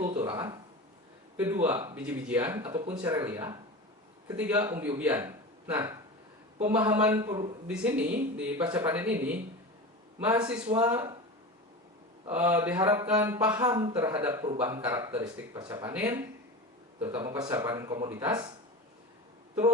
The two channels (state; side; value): normal; both; correlation 0.28